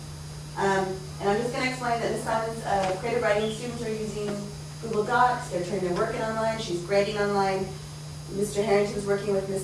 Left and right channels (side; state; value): both; identical; correlation 1.00